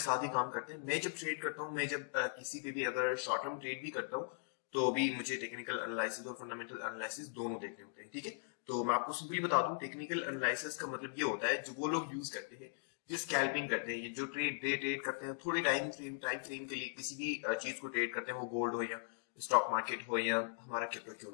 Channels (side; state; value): right; silent; digital silence